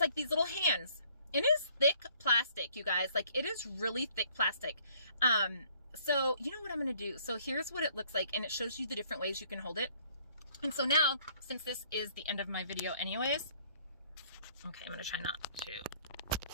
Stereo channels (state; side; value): inverted; both; correlation -0.61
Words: like these little hands. It is thick plastic, you guys. Like, it is really thick plastic. So you know what I'm going to do? So here's what it looks like. And it shows you the different ways you can hold it. And so now, since this is the end of my video anyways, okay, I'm going to try not to,